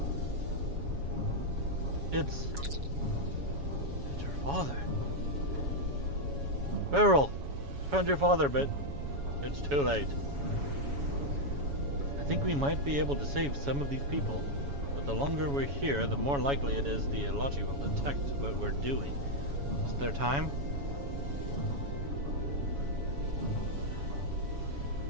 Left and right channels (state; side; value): late; left; 7.1 ms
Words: It's her father. Beryl, found your father, but it's too late. I think we might be able to save some of these people, but the longer we're here, the more likely it is the Alachi will detect what we're doing. Is there time?